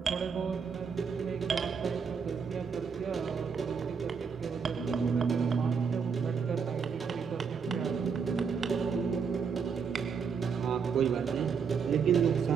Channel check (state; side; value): quieter; left; 6.0 dB